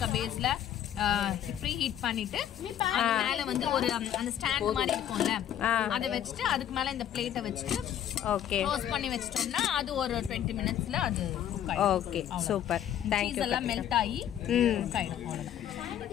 பேஸ்ல ப்ரீ ஹீட் பண்ணிட்டு அது மேல வந்து ஒரு அந்த ஸ்டாண்ட் மாதிரி இருக்கும்ல, அதை வச்சுட்டு அதுக்கு மேல இந்த பிளேட்டை வச்சுட்டு ஓகே க்ளோஸ் பண்ணி வச்சிட்டோம்னா அது ஒரு 20 minutesல அது குக் ஆயிடும். Okay super. Thank you. எல்லாம் மெல்ட் ஆகி குக் ஆயிடும். அவ்வளவுதான்.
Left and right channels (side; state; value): right; quieter; 10.6 dB